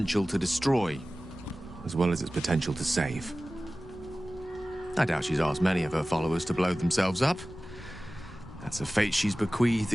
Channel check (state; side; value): normal; both; correlation 0.97